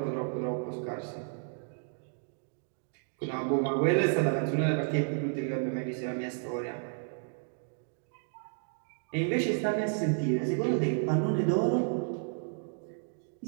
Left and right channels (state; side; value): silent; left; 56 dB below the other